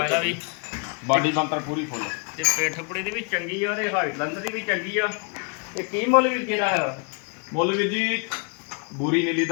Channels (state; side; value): quieter; right; 37.0 dB